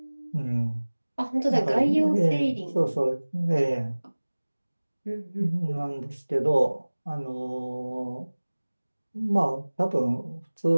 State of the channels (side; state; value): both; inverted; correlation -1.00